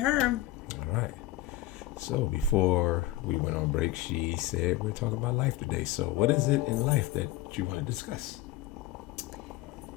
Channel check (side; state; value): right; quieter; 14.6 dB